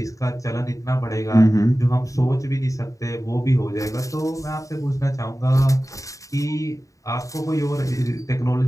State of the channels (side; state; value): right; late; 0.16 ms